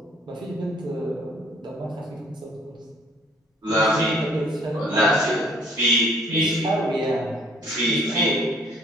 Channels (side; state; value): both; normal; correlation 0.59